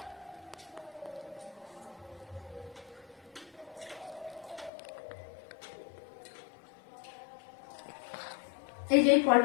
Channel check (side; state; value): right; drops out; at 4.7 s